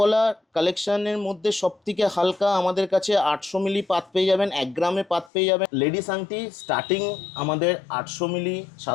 কালেকশনের মধ্যে সব থেকে হালকা আমাদের কাছে 800 মিলি পাত পেয়ে যাবেন, 1 গ্রামে পাত পেয়ে যাবেন। লেডিস আংটি স্টার্টিং আমাদের 800 মিলি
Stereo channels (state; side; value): drops out; right; at 5.3 s